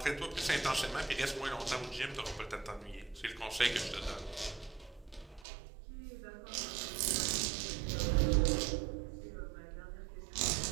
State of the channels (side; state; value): left; drops out; at 5.5 s